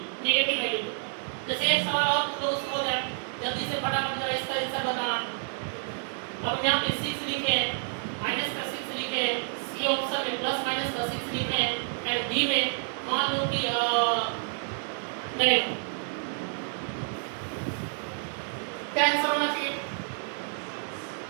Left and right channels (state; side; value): silent; left; 58 dB below the other